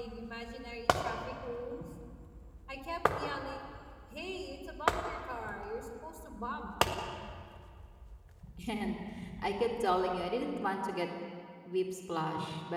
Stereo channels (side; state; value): both; identical; correlation 1.00